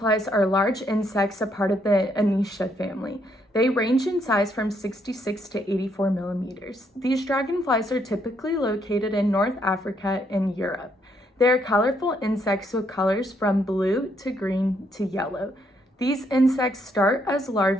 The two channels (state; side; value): normal; both; correlation 0.73